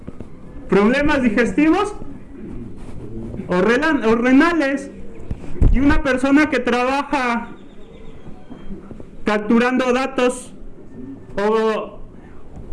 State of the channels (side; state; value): both; identical; correlation 1.00